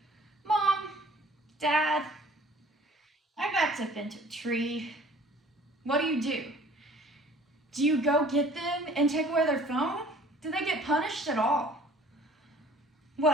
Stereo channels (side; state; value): both; normal; correlation 0.51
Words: Mom, Dad, I backed up into a tree. What do? Do you go get them and take away their phone? Do they get punished at all?